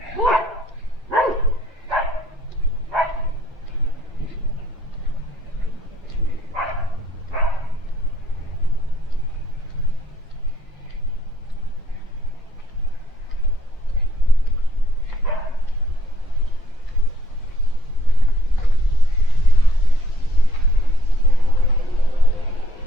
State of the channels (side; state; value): both; normal; correlation 0.66